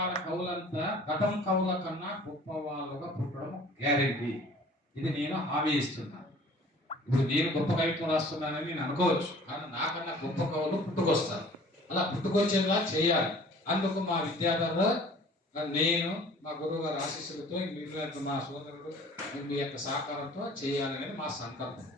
కవులంతా గతం కవుల కన్నా గొప్ప వాళ్ళుగా పుట్టడం గ్యారెంటీ. ఇది నేను హామీ ఇస్తున్నాను. ఇప్పుడు నేను గొప్ప కవిత్వం రాస్తున్నానని నేను అనుకోవచ్చు, కానీ నాకన్నా గొప్ప కవులు పుట్టుకొస్తారు. అలా పుట్టుకొచ్చేలా చేయాలి. అందుకు మా విద్యార్థులు, నేను మా గురువు గారి ఆశీస్సులతో మీరు మా సోదరుడు మీ యొక్క సహకారంతో చేయాలనేది మా సంకల్పం.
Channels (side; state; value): both; normal; correlation 0.49